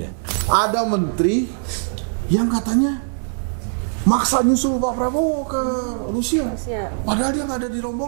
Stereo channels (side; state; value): left; silent; 57 dB below the other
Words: Ada menteri yang katanya maksa nyusul Pak Prabowo ke Rusia. Rusia. Padahal dia nggak ada di